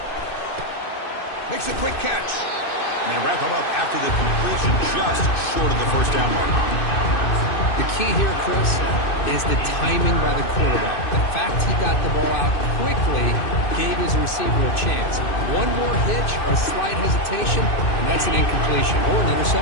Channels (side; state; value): right; late; 2.6 ms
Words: Makes a quick catch. And they wrap him up after the completion just short of the 1st down mark. The key here, Chris, is the timing by the quarterback. The fact he got the ball out quickly gave his receiver a chance. One more hitch or a slight hesitation, and that's an incompletion or an